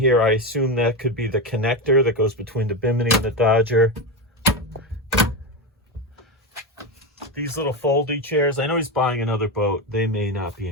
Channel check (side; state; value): both; normal; correlation 0.14